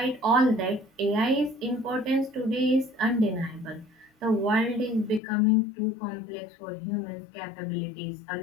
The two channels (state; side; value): drops out; right; at 5.2 s